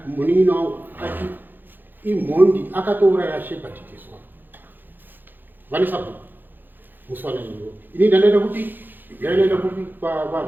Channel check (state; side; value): late; left; 0.091 ms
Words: munin'ina wangu ati imhondi akatouraya shepherd teswa vane sabhuku muswana iwo ini ndanoenda kuti ndanoenda